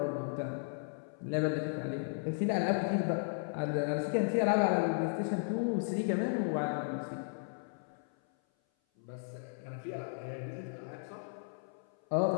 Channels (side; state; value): right; silent; 54 dB below the other